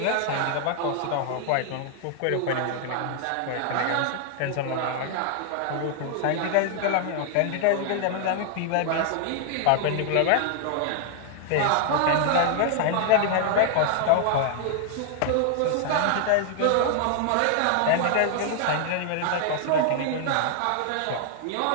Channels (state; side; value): different; both; correlation 0.00